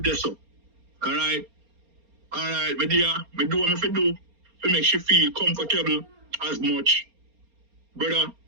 there so. Alright? Alright, my dear, me do what me fi do to make she feel comfortable as much. Brother,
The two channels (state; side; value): late; left; 4.3 ms